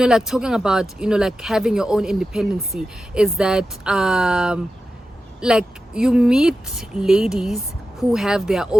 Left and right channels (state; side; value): normal; both; correlation 0.92